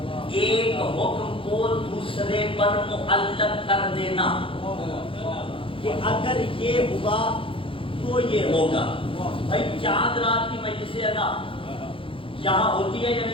ایک حکم کو دوسرے پر معلق کر دینا، کہ اگر یہ ہوا تو یہ ہوگا۔ بھائی چاند رات کی مجلس ادا یہاں ہوتی ہے یا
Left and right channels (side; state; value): right; late; 0.26 ms